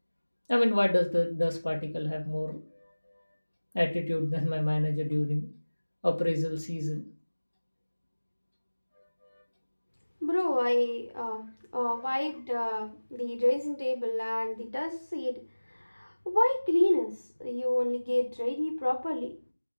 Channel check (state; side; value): inverted; both; correlation -1.00